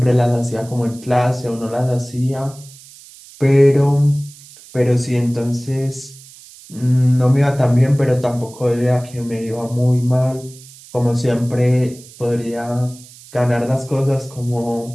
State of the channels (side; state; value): right; noise; hiss, 21 dB below the sound